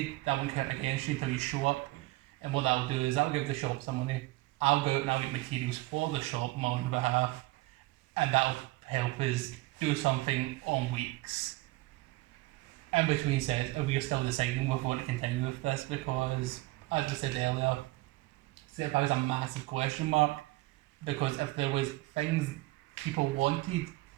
that won't count against you until you show up. And what that'll do is that'll give the shop some money. I'll go out and I'll get materials for the shop on my own behalf, and that'll help us do something on weeks. In between sets, we are still deciding if we want to continue with this because, as I said earlier, set is a massive question mark, because if there was things people wanted,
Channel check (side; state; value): left; quieter; 20.2 dB